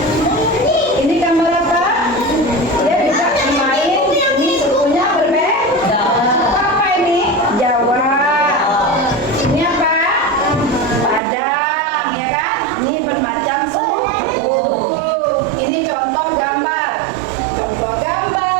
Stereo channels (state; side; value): drops out; left; at 11.2 s